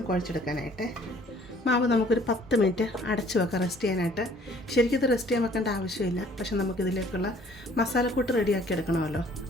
കുഴച്ചെടുക്കാനായിട്ട്. മാവ് നമുക്കൊരു 10 മിനിറ്റ് അടച്ചു വെക്കാം റെസ്റ്റ് ചെയ്യാനായിട്ട്. ശരിക്കും ഇത് റെസ്റ്റ് ചെയ്യാൻ വെക്കേണ്ട ആവശ്യമില്ല. പക്ഷെ നമുക്കിതിലേക്കുള്ള മസാലക്കൂട്ട് റെഡിയാക്കി എടുക്കണമല്ലോ.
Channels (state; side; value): normal; both; correlation 0.56